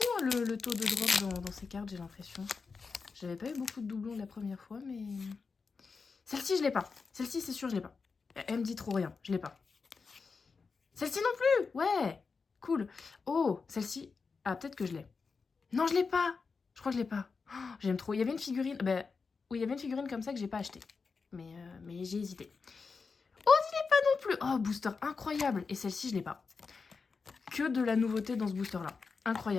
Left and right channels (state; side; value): quieter; right; 4.9 dB